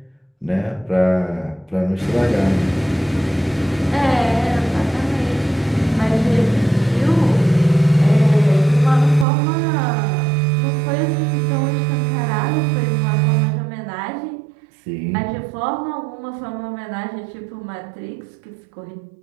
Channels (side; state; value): left; drops out; at 9.2 s